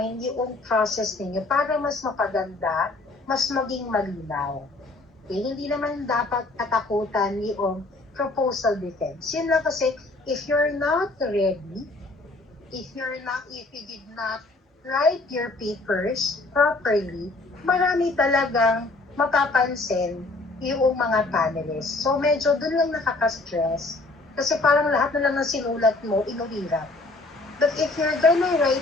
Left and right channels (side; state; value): right; quieter; 3.1 dB